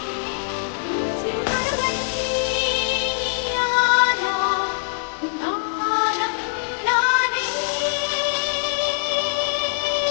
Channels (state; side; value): silent; right; digital silence